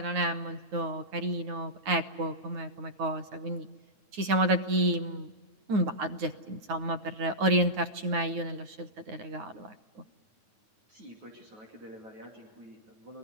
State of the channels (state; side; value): late; left; 9.4 ms